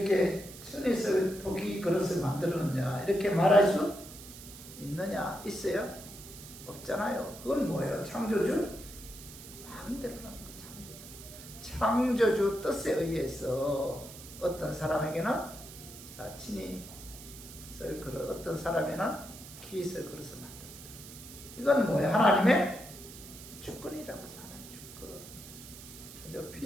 천이 쓸 토기 그릇을 만들었느냐 이렇게 말할 수 있느냐? 있어요? 없잖아요. 그건 뭐예요? 창조주 마음대로라는 거죠. 창조주 뜻에 의해서 어떤 사람에게는 친히 쓸 그릇, 어떤 사람에는 기 쓸 그릇을 만든다. 이건 뭐예요? 하나님의 주권이라고 하죠. 하나님 주권. 그죠?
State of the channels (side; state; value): right; noise; hiss, 15 dB below the sound